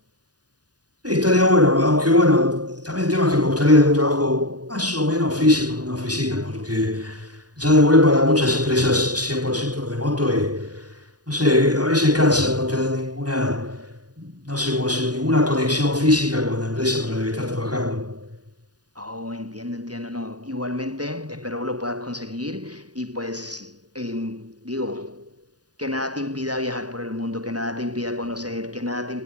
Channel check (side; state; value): left; late; 0.68 ms